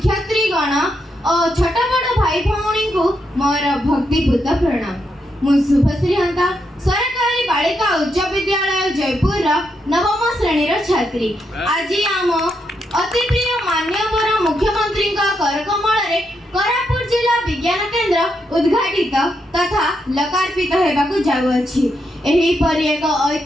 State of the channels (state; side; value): normal; both; correlation 0.81